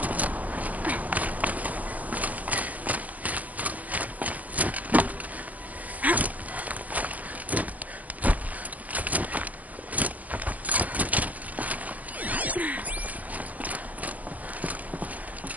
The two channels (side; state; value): left; late; 0.076 ms